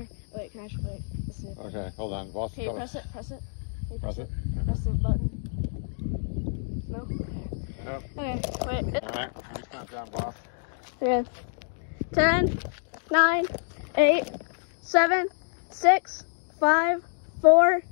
Wait, can I wait? Let's see. Okay, hold on. Boss, Can you press it? Press it? Can you Press it. Press the button. No? Nope. Okay, wait. Alright, just count down, boss. Okay. 10, 9, 8, 7, 6, 5, 4,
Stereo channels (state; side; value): silent; right; 60 dB below the other